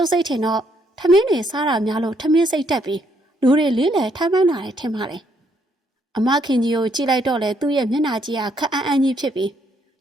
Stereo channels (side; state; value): both; normal; correlation 0.71